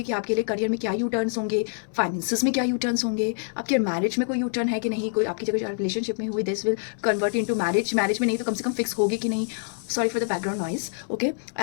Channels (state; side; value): silent; right; 61 dB below the other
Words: कि आपके लिए करियर में क्या यू टर्न्स होंगे, फाइनेंसिस में क्या यू टर्न्स होंगे, आपके मैरिज में कोई यू टर्न है कि नहीं, कोई आपकी जगह रिलेशनशिप में हुई this will convert into marriage, marriage में नहीं तो कम से कम फिक्स होगी कि नहीं. Sorry for the background noise. Okay,